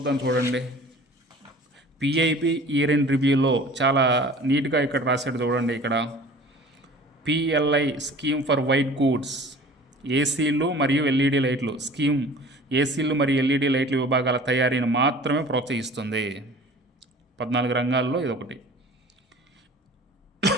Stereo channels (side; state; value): both; normal; correlation 0.45